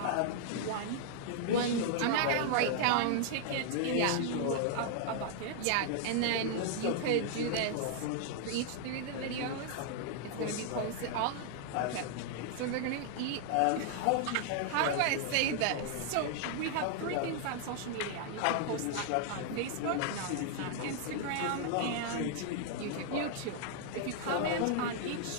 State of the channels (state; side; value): different; both; correlation 0.00